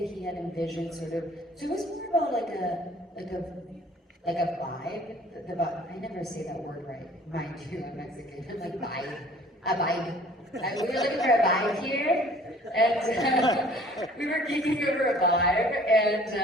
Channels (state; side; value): normal; both; correlation 0.53